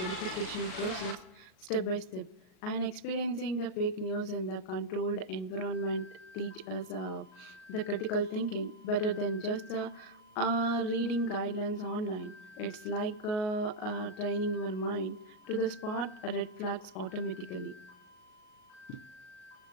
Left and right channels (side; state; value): right; late; 38 ms